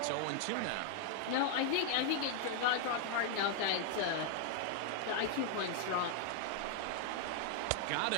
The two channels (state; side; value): different; both; correlation 0.00